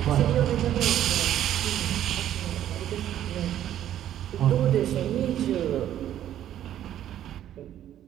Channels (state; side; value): quieter; left; 11.5 dB